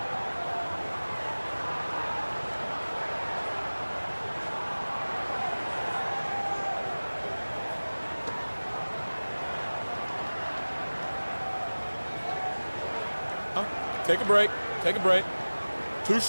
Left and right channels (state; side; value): inverted; both; correlation -1.00